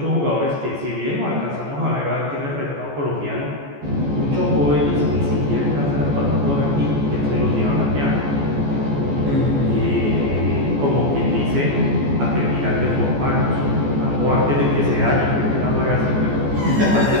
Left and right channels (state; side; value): late; left; 14 ms